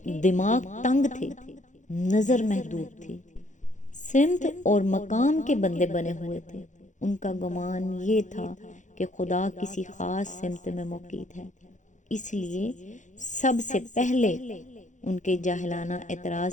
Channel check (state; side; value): late; right; 0.36 ms